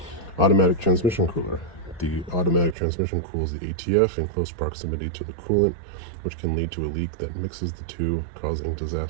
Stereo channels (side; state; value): left; drops out; at 2.8 s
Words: Automatic transmission cooler. The automatic transmission cools the ATF in close proximity to the coolant, which can lead to a leak that mixes the two, causing